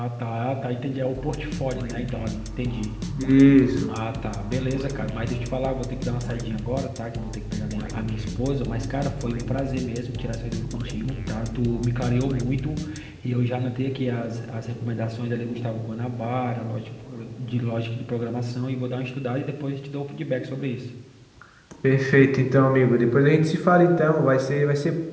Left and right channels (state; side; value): identical; both; correlation 1.00